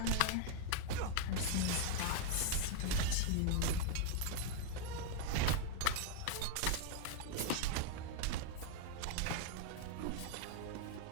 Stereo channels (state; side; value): different; both; correlation 0.00